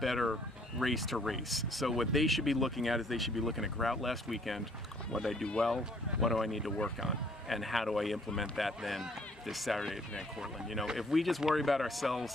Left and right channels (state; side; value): normal; both; correlation 0.62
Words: race to race. So what they should be looking at is they should be looking at Grout last weekend. What did I do well? What do I need to work on? And how do I implement that then this Saturday at Van Cortlandt? You know, if we just worry about